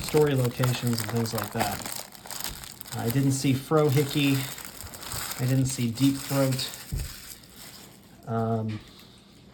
story locations and things like that. I didn't see Frohickey. I didn't see Deep Throat. There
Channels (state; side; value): identical; both; correlation 1.00